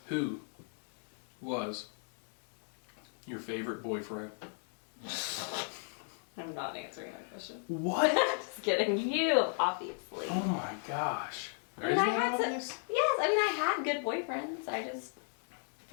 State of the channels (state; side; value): silent; right; 54 dB below the other